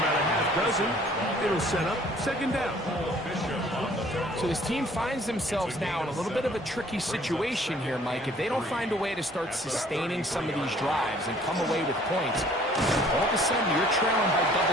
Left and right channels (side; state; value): both; normal; correlation 0.56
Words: a half dozen. It'll set up second down. So this team finds themselves now in a little bit of a tricky situation here, Mike. If they don't find a way to start sustaining some of these drives and come away with points, all of a sudden you're trailing by